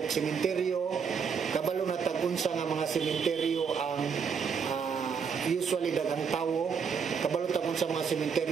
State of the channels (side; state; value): left; quieter; 6.3 dB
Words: sementeryo, kabalo na tagunsa nga mga sementeryo ang usually daghang tawo, kabalo tagon sa mga